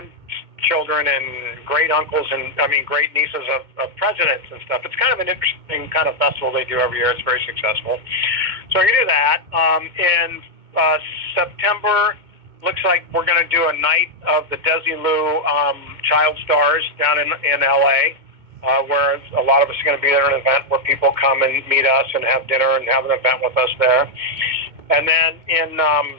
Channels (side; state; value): left; late; 2.2 ms